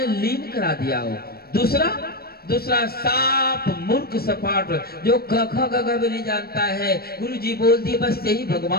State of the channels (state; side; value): late; right; 0.45 ms